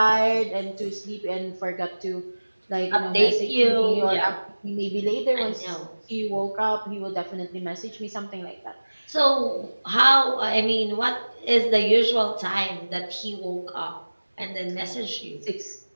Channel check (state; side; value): inverted; both; correlation -1.00